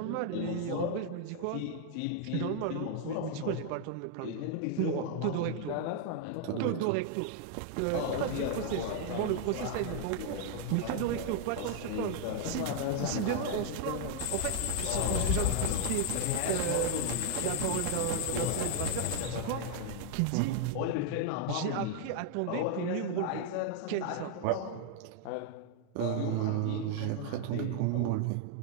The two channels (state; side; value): different; both; correlation 0.00